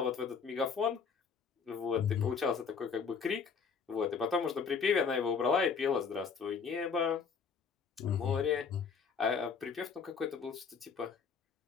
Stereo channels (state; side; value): quieter; right; 5.9 dB